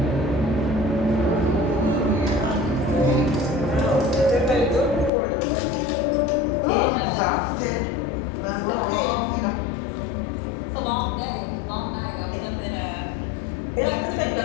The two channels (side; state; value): right; drops out; at 5.1 s